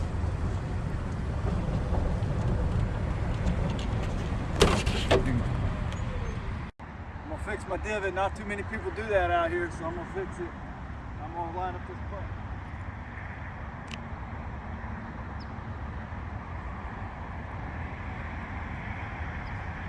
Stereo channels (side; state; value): both; identical; correlation 1.00